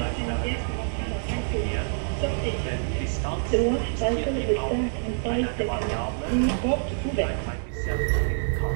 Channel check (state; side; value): silent; left; digital silence